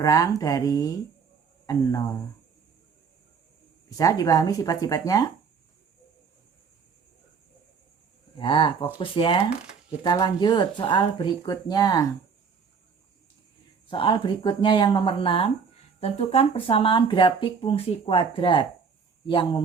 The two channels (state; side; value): quieter; left; 5.8 dB